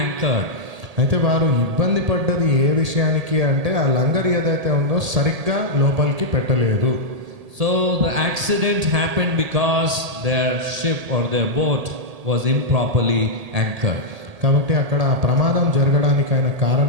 anchored. అయితే వారు ఇబ్బంది పడ్డది ఏ విషయానికి అంటే ఆ లంగర్ ఏదైతే ఉందో సరిగ్గా లోపలికి పెట్టలేదు. So the accident happened because their ship or their boat was improperly anchored. కాబట్టి అక్కడ ఆ ప్రమాదం జరగడానికైన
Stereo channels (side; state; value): left; late; 1.8 ms